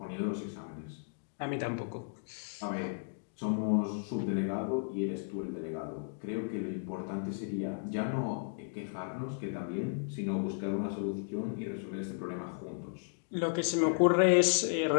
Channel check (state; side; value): silent; right; digital silence